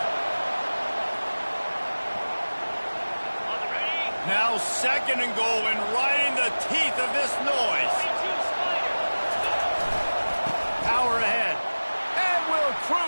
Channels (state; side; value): inverted; both; correlation -1.00